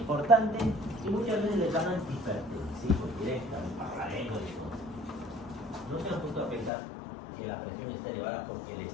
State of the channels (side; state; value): right; drops out; at 6.7 s